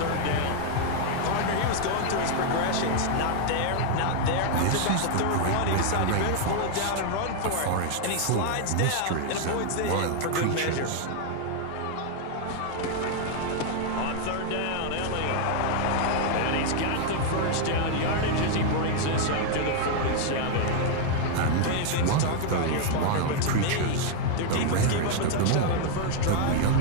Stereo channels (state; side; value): different; both; correlation 0.00